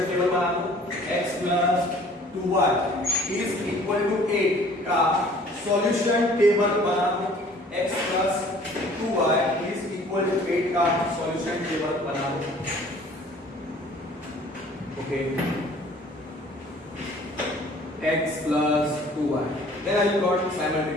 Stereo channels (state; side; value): normal; both; correlation 0.52